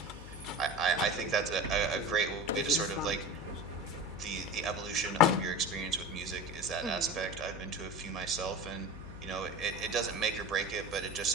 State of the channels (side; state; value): left; noise; hum, 13 dB below the sound